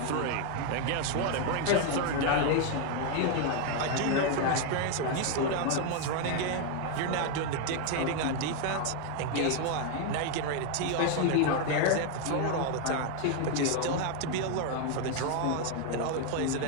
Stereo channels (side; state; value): both; different; correlation 0.01